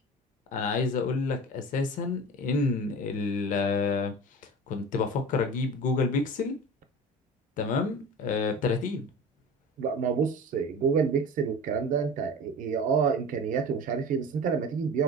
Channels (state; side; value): normal; both; correlation 0.35